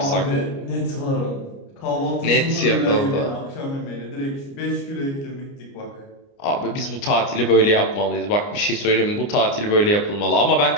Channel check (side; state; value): right; late; 29 ms